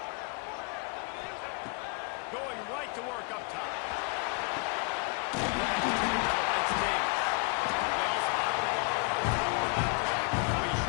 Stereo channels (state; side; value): quieter; right; 31.4 dB